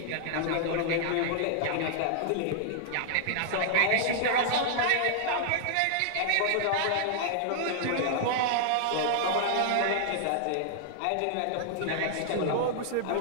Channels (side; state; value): both; different; correlation -0.01